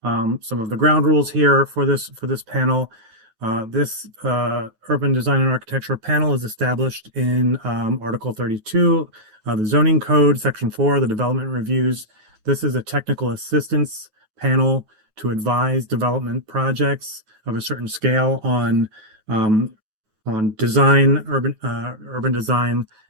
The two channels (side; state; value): left; late; 9.2 ms